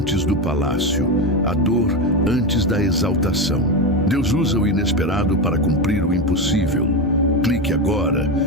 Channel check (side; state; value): both; normal; correlation 0.15